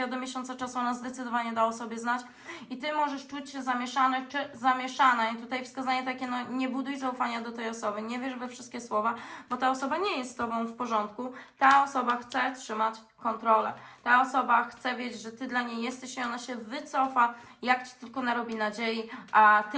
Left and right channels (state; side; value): identical; both; correlation 1.00